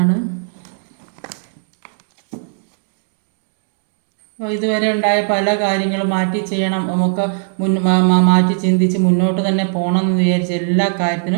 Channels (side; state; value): left; silent; digital silence